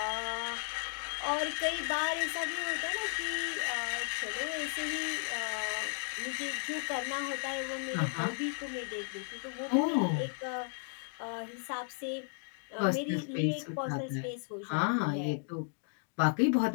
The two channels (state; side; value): silent; right; 55 dB below the other